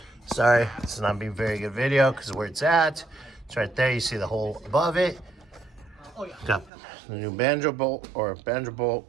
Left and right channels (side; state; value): left; drops out; at 6.7 s